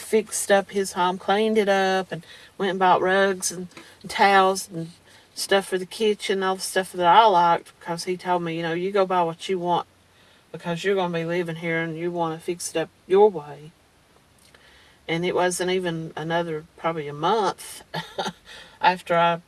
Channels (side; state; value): both; identical; correlation 1.00